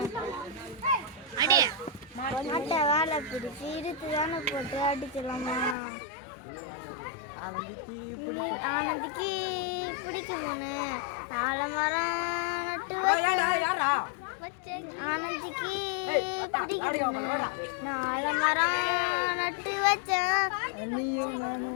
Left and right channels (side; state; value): right; drops out; at 5.8 s